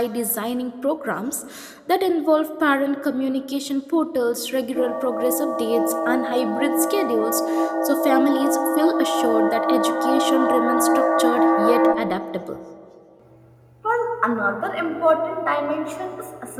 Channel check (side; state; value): both; identical; correlation 1.00